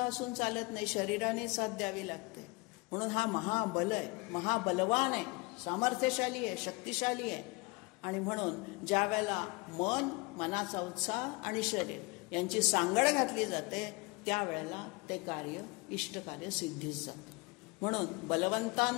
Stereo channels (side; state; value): right; quieter; 26.9 dB